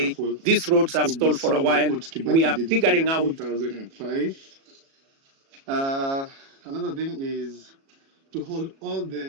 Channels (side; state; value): left; late; 37 ms